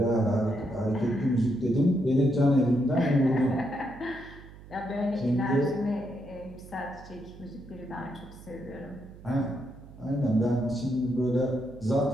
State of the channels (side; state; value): right; noise; hum, 18 dB below the sound